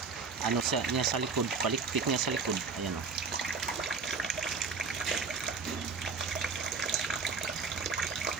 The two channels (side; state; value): left; quieter; 4.9 dB